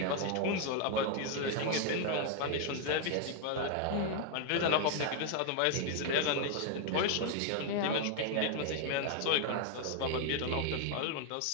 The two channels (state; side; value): different; both; correlation 0.00